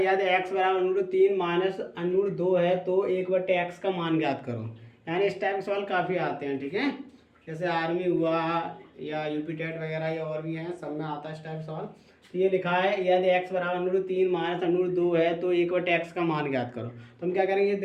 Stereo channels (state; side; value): identical; both; correlation 1.00